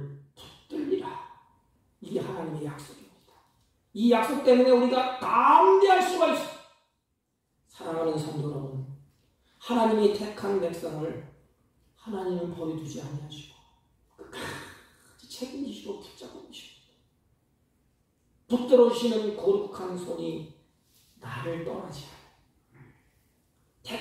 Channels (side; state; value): both; identical; correlation 1.00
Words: 붙들리라. 이게 하나님의 약속입니다. 이 약속 때문에 우리가 담대할 수가 있습니다. 사랑하는 성도 여러분, 하나님이 택한 백성을 하나님은 버려두지 아니하시고 끝까지 책임지시고 붙잡고 계십니다. 붙들어주시는 거룩한 손이 나를 떠나지 않아요.